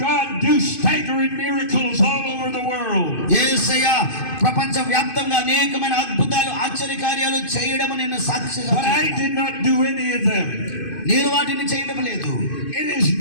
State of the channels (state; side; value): late; right; 2.5 ms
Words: God do staggering miracles all over the world. యేసయ్య ప్రపంచ వ్యాప్తంగా అనేకమైన అద్భుతాలు ఆశ్చర్యకార్యాలు చేయడం నేను సాక్షిగా. But I did not do any of them. నేను వాటిని చేయడం లేదు. It is